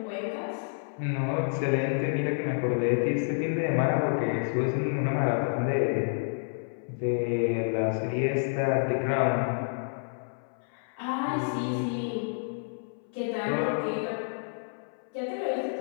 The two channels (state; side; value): silent; right; 58 dB below the other